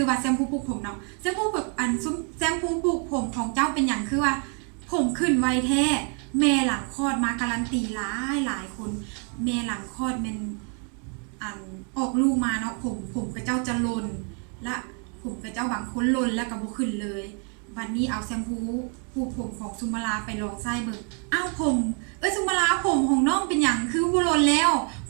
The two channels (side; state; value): left; quieter; 39.8 dB